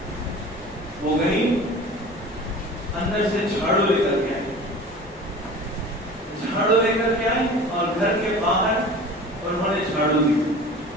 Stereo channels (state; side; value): normal; both; correlation 0.39